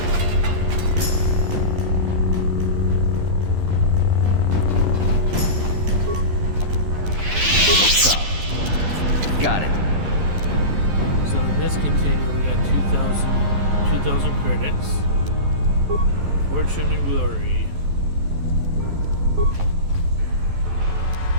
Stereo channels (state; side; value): late; left; 11 ms